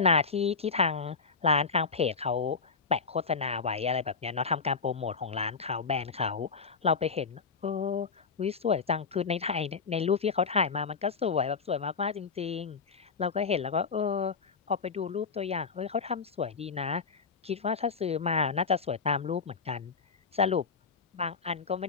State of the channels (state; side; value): quieter; right; 5.2 dB